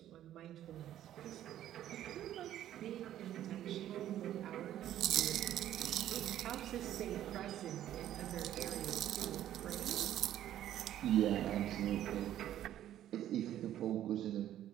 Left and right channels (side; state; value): left; quieter; 12.0 dB